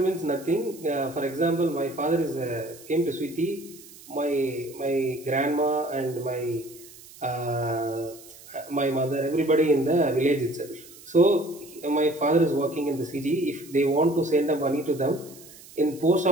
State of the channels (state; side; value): noise; right; hiss, 20 dB below the sound